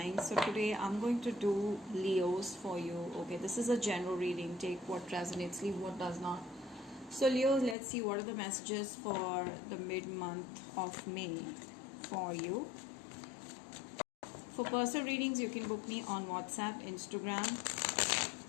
So today I'm going to do Leos for you. Okay, this is a general reading. Take what resonates, leave what does not. So Leos, let's see what are the messages for the mid-month of May for you. For personal readings, you can book me on WhatsApp, Instagram,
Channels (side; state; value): right; drops out; at 7.8 s